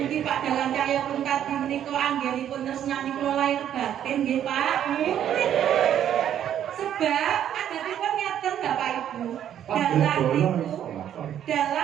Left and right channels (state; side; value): quieter; left; 10.3 dB